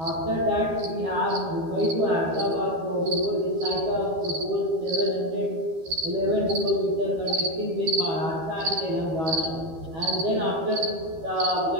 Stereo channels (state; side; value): late; left; 12 ms